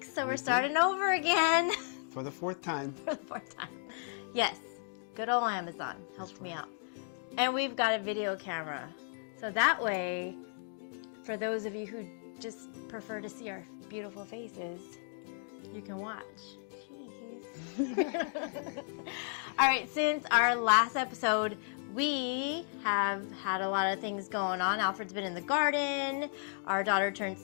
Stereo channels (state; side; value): silent; right; digital silence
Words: so we're starting over again. For the fourth time. For the fourth time. Yes, good old Amazon helped me out. And we've got a video camera. So that way, for those of you who just prefer to see our beautiful faces, you can watch. Jeez. All right, since our last episode, we have had a lot of things going on. Alfred's been in the garden. Our daughter turned